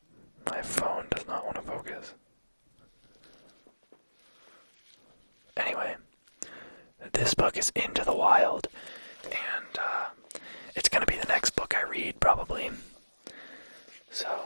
My phone does not want to focus. Anyway, this book is Into the Wild, and it's going to be the next book I read, probably. So,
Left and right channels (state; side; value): inverted; both; correlation -1.00